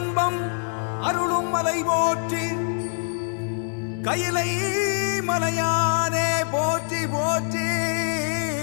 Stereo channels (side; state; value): right; silent; 59 dB below the other